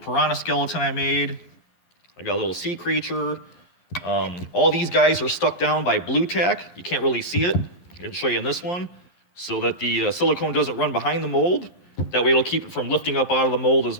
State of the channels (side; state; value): right; late; 11 ms